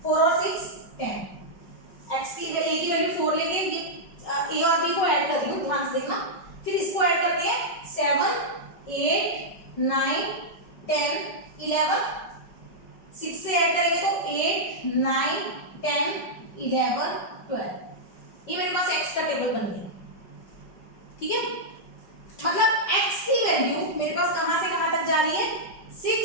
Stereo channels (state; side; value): late; right; 5.2 ms